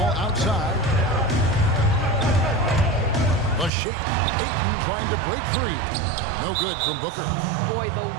outside. The shake. Ayton trying to break free. No good from Booker. Boy, the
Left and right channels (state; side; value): drops out; left; at 3.7 s